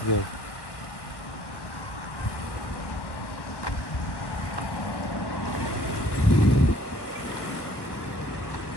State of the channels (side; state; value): right; late; 1.1 ms